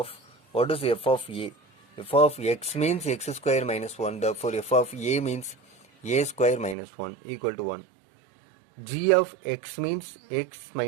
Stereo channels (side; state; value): left; drops out; at 6.8 s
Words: what is f of a? F of x means x square minus 1. Therefore, f of a means a square minus 1 equal to 1. G of x means x